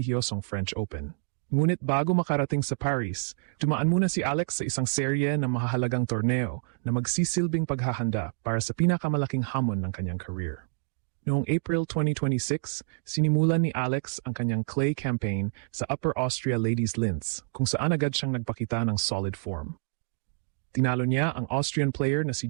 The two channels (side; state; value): left; silent; digital silence